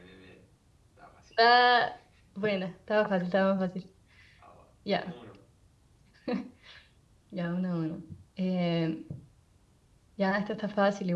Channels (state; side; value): identical; both; correlation 1.00